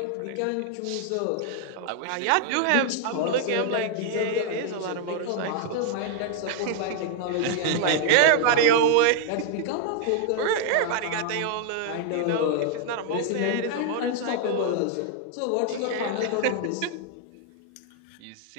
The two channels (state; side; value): different; both; correlation 0.00